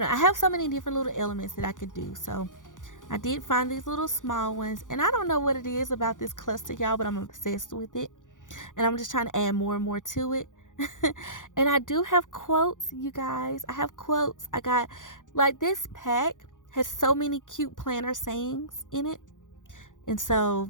have so many different little elements that I could do. So I did find these little small ones. And I don't know what it is about this cluster, y'all, but I'm obsessed with it. And I'm just trying to add more and more to it. And I do have quotes, you guys. I have quotes. I got, like, this pack has so many cute planner sayings in it. And so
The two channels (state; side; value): late; right; 0.87 ms